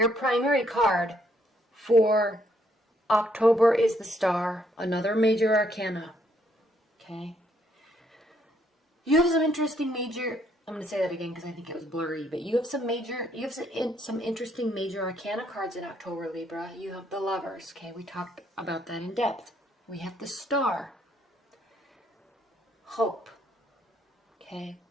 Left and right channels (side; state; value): both; normal; correlation 0.71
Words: primary card for October is the Star, another major arcana, okay? You have some interesting major, I'm going to say that again because I think it was blurry, but you have some interesting major arcana cards in October, Libra. You have the Lovers, okay? We talked about that in depth. We have the Star, hope, okay?